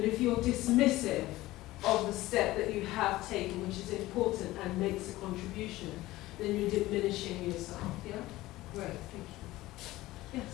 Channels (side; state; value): right; quieter; 17.5 dB